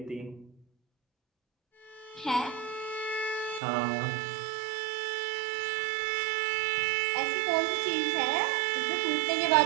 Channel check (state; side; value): drops out; left; at 3.6 s